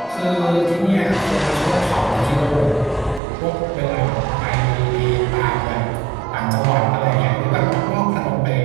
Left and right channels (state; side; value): drops out; left; at 3.2 s